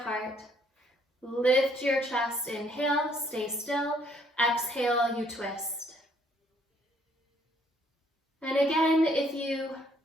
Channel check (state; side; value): normal; both; correlation 0.65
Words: Lift your chest, inhale, stay still. Exhale, you twist. And again, if you